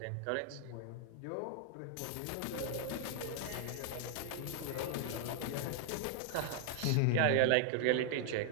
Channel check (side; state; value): both; different; correlation 0.00